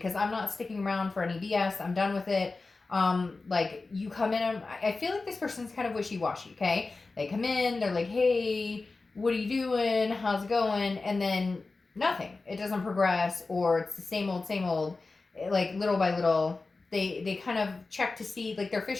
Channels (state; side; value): quieter; right; 3.7 dB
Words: I'm not sticking around for any BS. I'm done with it. Like you come in, I feel like this person's kind of wishy-washy. Okay. They come in, they're like, hey, what are you doing? How's it going? And then nothing. It doesn't progress, or it's the same old, like little by little. They kind of check to see, like they're